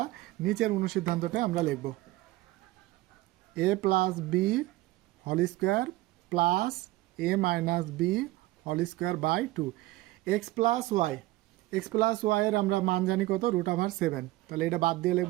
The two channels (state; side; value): quieter; left; 18.3 dB